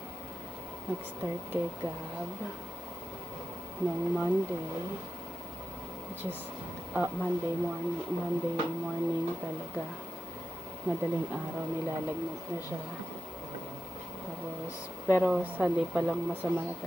Nag-start kay Gab noong Monday, which is Monday morning talaga. Madaling araw nilalagnat na siya. Tapos, pero Sunday pa lang masama na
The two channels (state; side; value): normal; both; correlation 0.88